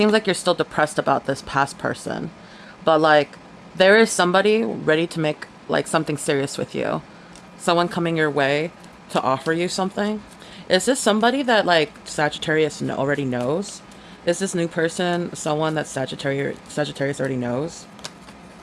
like you're still depressed about this past person. But, like, there is somebody ready to make, like, something serious with you. Someone coming your way to offer you something. Is this somebody that like Sagittarius already knows? Is this new person someone that Sagittarius already knows?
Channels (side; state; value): both; identical; correlation 1.00